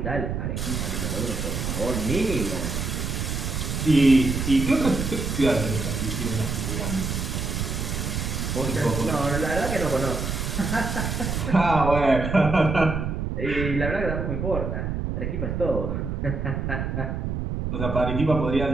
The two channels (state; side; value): noise; right; rumble, 2 dB below the sound